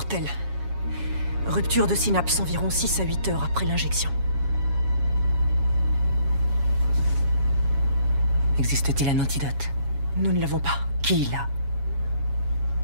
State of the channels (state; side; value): late; left; 7.2 ms